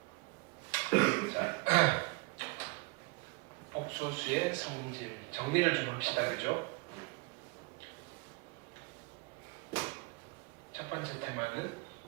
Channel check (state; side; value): quieter; left; 28.3 dB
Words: 자, 복수수의 성질 정리를 좀 합시다. 그죠? 첫 번째 테마는